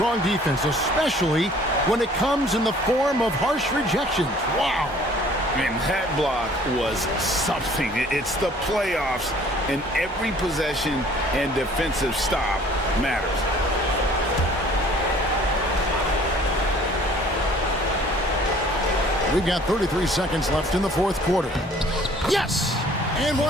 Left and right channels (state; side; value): normal; both; correlation 0.54